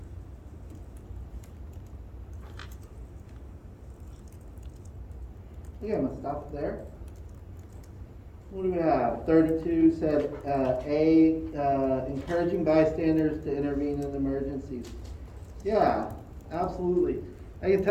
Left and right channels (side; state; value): both; identical; correlation 1.00